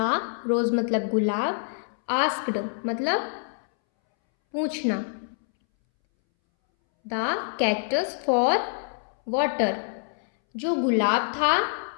रोज मतलब गुलाब, आस्क्ड मतलब पूछना, द कैक्टस फॉर वाटर। जो गुलाब था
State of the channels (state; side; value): silent; right; 61 dB below the other